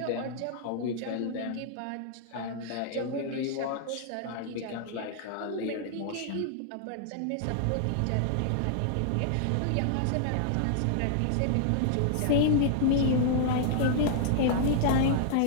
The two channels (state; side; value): different; both; correlation -0.01